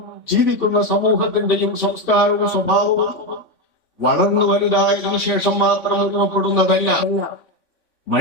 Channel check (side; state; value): right; late; 3.5 ms